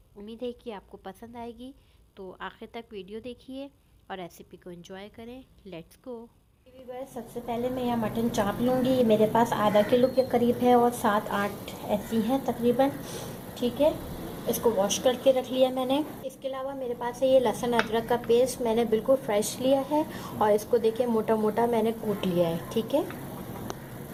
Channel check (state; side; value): identical; both; correlation 1.00